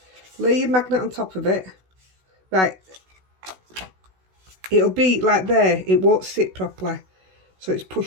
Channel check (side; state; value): left; late; 16 ms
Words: Lay your magnet on top of it. Right. It'll be like there. It won't sit properly. So it's